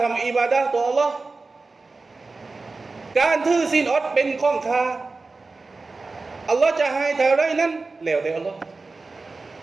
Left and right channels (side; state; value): left; quieter; 3.8 dB